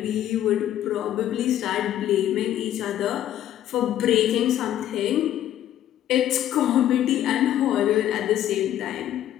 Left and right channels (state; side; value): quieter; right; 11.8 dB